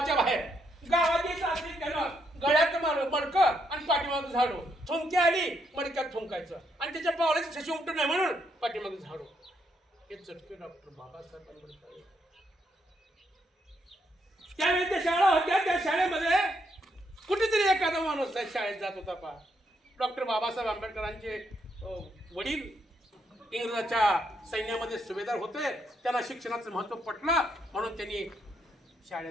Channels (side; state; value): both; normal; correlation 0.76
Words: बाहेर, गावाची असली त्यानं गळ्यात मडकं आणि पाठीमागं झाडू, थुंकी आली मडक्यात थुंकायचं आणि त्याच्या पावलाची ठशी उमटू नये म्हणून पाठीमागं झाडू. हे चटके डॉक्टर बाबासाहेब आंबेडकर. त्यावेळी त्या शाळा होत्या, त्या शाळेमध्ये कुठेतरी एखादा माणूस शाळेत जात होता पहा. डॉक्टर बाबासाहेब आंबेडकरांचे वडील इंग्रजाच्या सैन्यामध्ये सुभेदार होते. त्यांना शिक्षणाचं महत्त्व पटलं म्हणून त्यांनी